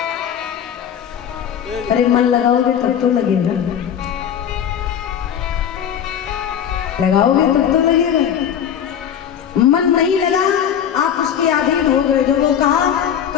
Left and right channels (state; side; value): quieter; right; 9.0 dB